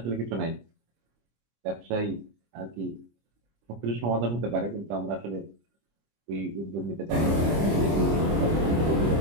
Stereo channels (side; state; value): left; late; 25 ms